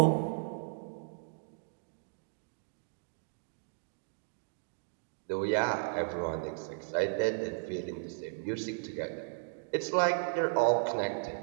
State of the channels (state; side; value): silent; left; digital silence